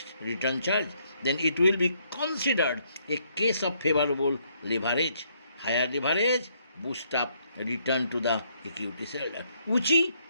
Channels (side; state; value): both; inverted; correlation -0.70